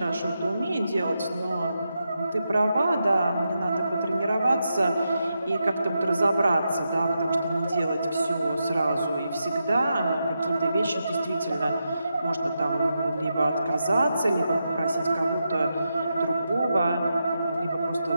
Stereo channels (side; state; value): both; inverted; correlation -0.86